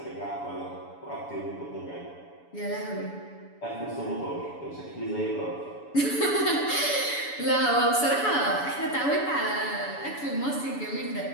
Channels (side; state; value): right; late; 7.0 ms